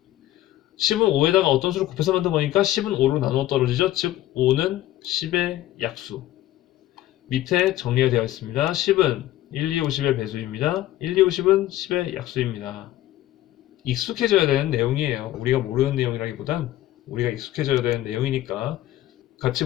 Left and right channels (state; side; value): quieter; right; 14.6 dB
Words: 10은 5에다가 어떤 수를 곱해서 만든 거니까 10은 5로 나누어 떨어지죠. 즉 5는 10의 약수. 밑에 정리가 되어 있습니다. 10은 1, 2, 5, 10의 배수입니다. 1, 2, 5, 10은 10의 약수입니다. 익숙해져야 되는 내용이에요. 우리가 모르는 내용이라기보단 우리가 익숙해져야 되는 내용이니까 같이